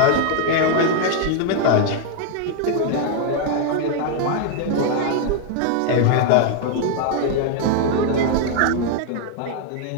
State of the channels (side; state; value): both; different; correlation 0.00